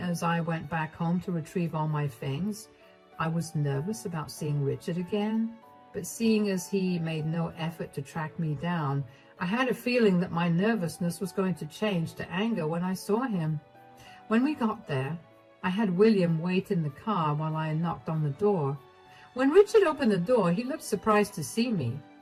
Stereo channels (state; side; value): identical; both; correlation 1.00